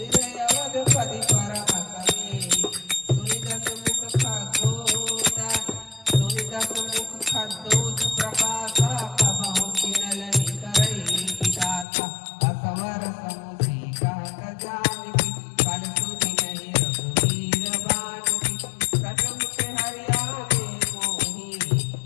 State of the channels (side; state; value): right; drops out; at 11.9 s